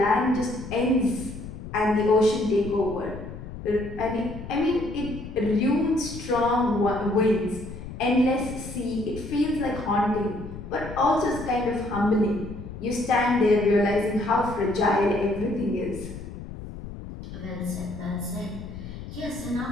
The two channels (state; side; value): noise; left; rumble, 11 dB below the sound